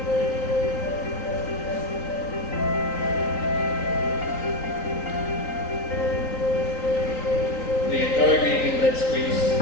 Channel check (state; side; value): late; right; 3.9 ms